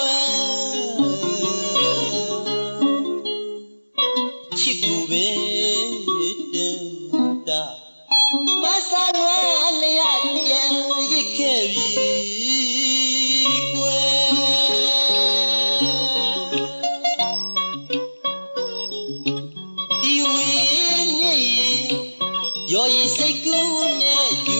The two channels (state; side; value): inverted; both; correlation -1.00